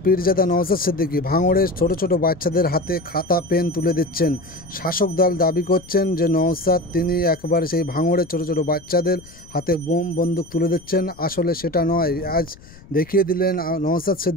পীরজাদা নওশাদ সিদ্দিকী। ভাঙড়ের ছোট ছোট বাচ্চাদের হাতে খাতা পেন তুলে দিচ্ছেন। শাসক দল দাবি করছেন যে নওশাদ তিনি একবারে সেই ভাঙড়ের ছোট ছোট বাচ্চাদের হাতে বোম বন্দুক তুলে দিচ্ছেন। আসলে সেটা নয়। আজ দেখিয়ে দিলেন নওশাদ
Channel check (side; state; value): left; noise; rumble, 23 dB below the sound